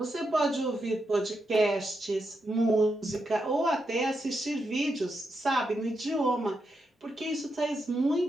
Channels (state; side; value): normal; both; correlation 0.84